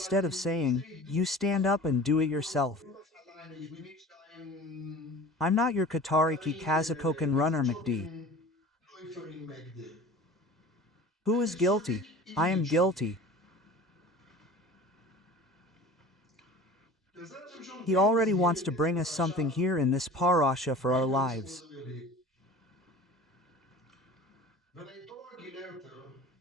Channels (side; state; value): both; normal; correlation 0.41